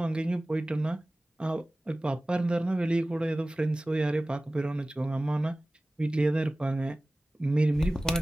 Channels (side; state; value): both; normal; correlation 0.97